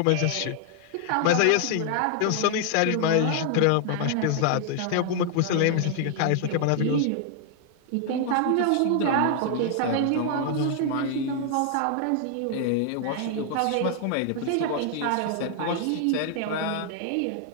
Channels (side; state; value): both; different; correlation 0.00